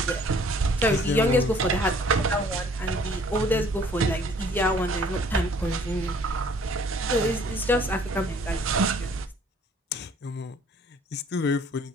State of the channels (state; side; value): normal; both; correlation 0.57